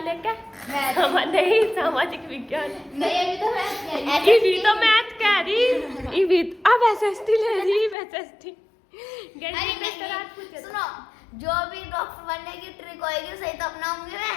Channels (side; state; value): right; drops out; at 8.0 s